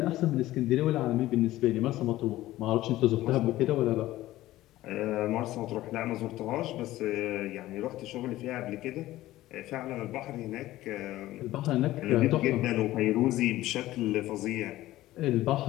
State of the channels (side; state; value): right; quieter; 15.9 dB